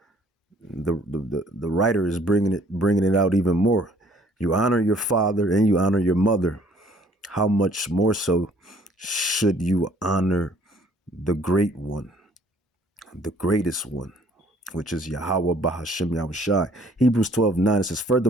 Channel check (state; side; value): normal; both; correlation 0.59